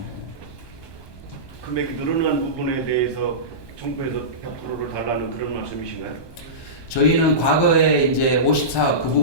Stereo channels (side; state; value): right; late; 1.2 ms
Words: 금액이 늘어난 부분에 대해서 정부에서 100%를 달라는 그런 말씀이신가요? 저희는 과거에 이제 54억 그